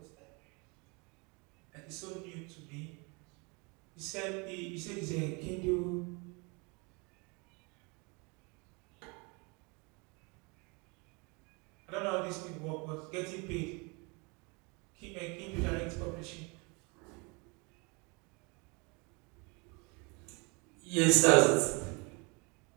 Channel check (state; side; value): quieter; left; 29.9 dB